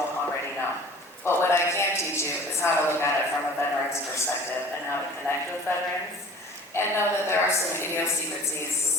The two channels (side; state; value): both; normal; correlation 0.45